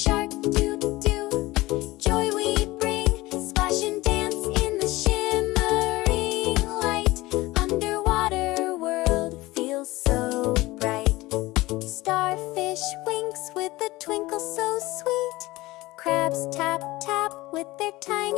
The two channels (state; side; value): quieter; right; 19.6 dB